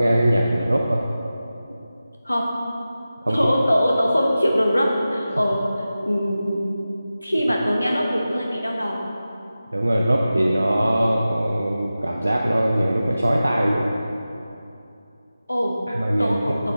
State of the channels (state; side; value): inverted; both; correlation -0.94